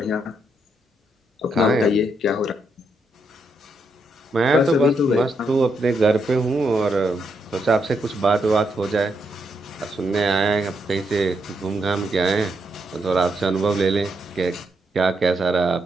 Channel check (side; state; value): both; normal; correlation 0.79